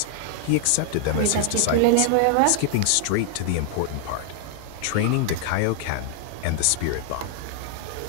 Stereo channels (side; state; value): both; different; correlation -0.01